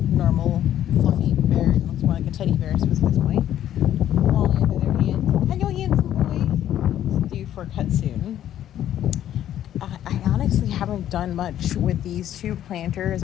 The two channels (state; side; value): quieter; right; 11.4 dB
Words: normal fluffy bear. He looks more like a teddy bear at this point. Wally on the other hand. Hello, handsome boy. It's due for a cut soon. I honestly haven't done much with these two planters.